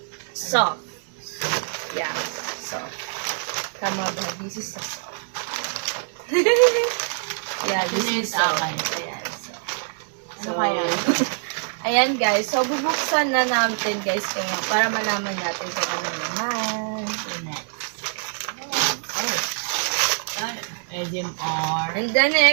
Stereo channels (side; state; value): left; silent; digital silence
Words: soft. Yeah. Soft. Tama ba? This is a soft. Yeah, this is soft. Ayan. Ano kaya? Ayan guys. So, bubuksan na natin guys kaya para malaman natin kung ano naman. Next. SMR. And then,